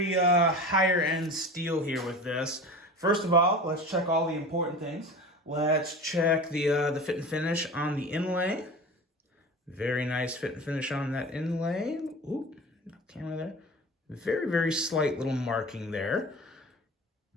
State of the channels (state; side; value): normal; both; correlation 0.34